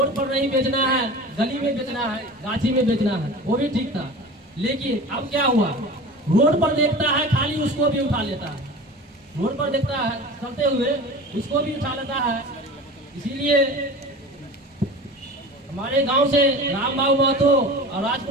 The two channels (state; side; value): normal; both; correlation 0.36